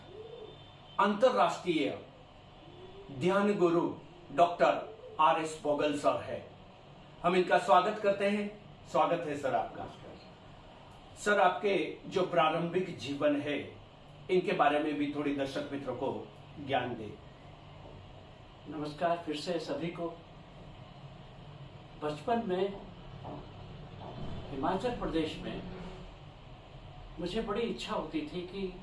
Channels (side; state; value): both; identical; correlation 1.00